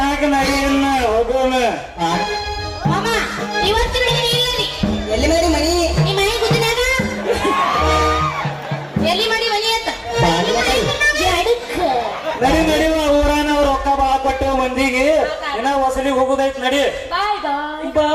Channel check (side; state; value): both; identical; correlation 1.00